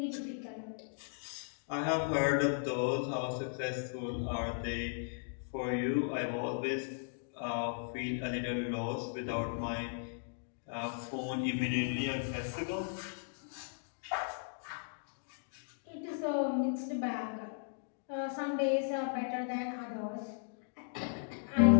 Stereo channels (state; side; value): silent; right; digital silence